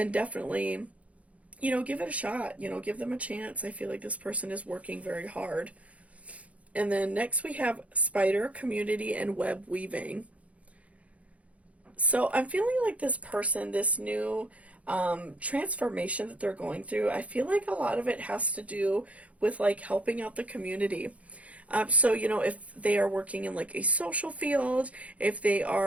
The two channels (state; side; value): late; left; 0.066 ms